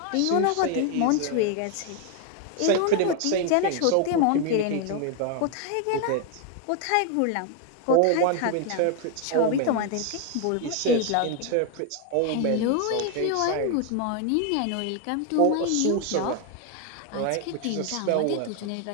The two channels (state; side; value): different; both; correlation 0.01